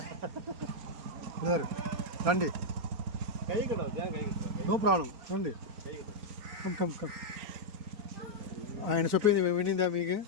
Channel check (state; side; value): late; left; 4.4 ms